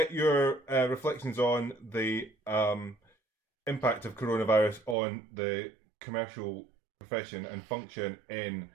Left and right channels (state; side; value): drops out; left; at 5.0 s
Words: your reflections on the impact of coronavirus on the commercial profession and function in